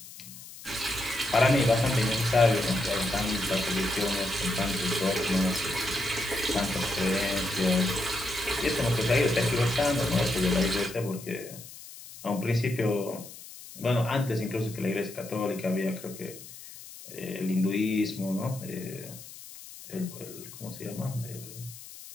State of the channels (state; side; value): noise; left; hiss, 16 dB below the sound